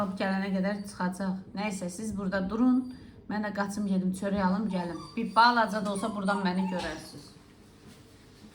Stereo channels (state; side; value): identical; both; correlation 1.00